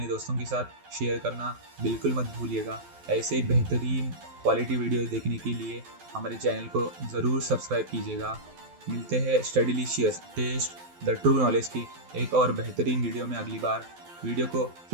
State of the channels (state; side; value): late; left; 12 ms